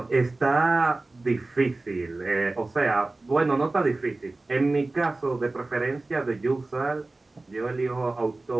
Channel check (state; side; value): quieter; left; 3.1 dB